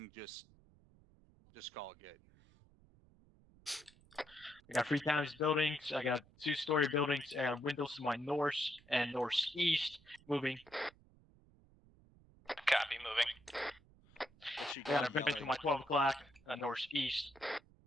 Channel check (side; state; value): right; noise; rumble, 27 dB below the sound